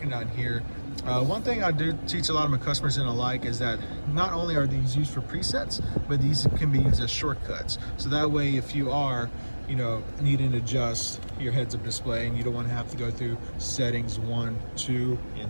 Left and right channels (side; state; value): both; inverted; correlation -1.00